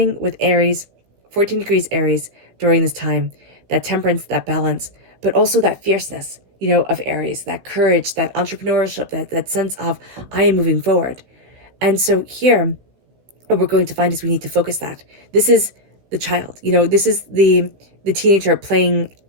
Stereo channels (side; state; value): left; late; 16 ms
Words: with Aries, 14 degrees Aries during this time, that temperance, that balance, but also that fierceness, of Aries, that courage, that entrepreneurship, that sense of I am moving forward. And so here, what we're going to find is we need to focus that. This is the child, this is the teenager playing